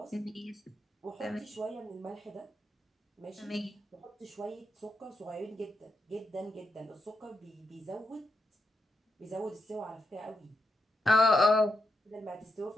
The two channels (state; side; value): normal; both; correlation 0.85